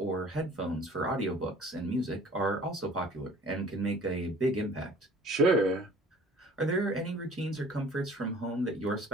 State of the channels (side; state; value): both; normal; correlation 0.50